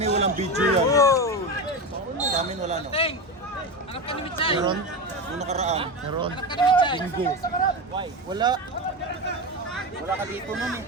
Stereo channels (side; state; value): both; normal; correlation 0.20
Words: walang video yan? Sa amin wala no? Meron? Nung nakaraan? Meron. Bingo. Wala. Wala ka dito nun eh.